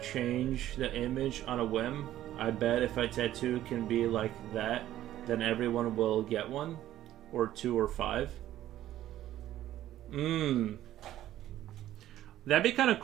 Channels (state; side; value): quieter; left; 13.1 dB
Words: the image on a whim? I bet if a tattoo can be like that, then everyone will get one, or 2 or 5. That'd be kind of